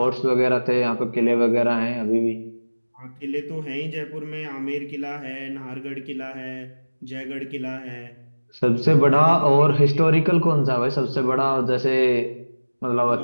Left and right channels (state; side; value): inverted; both; correlation -1.00